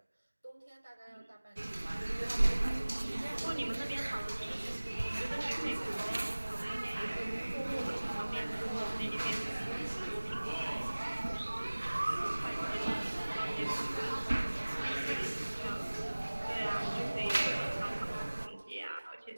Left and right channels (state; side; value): inverted; both; correlation -1.00